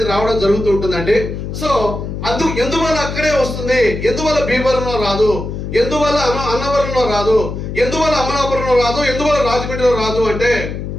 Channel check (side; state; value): left; noise; hum, 6 dB below the sound